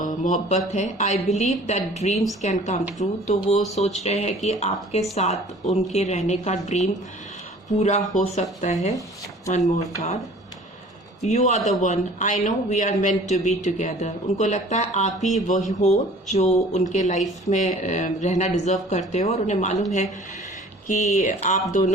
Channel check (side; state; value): both; normal; correlation 0.49